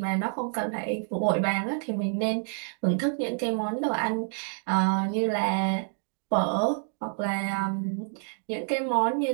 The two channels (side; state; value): left; silent; 59 dB below the other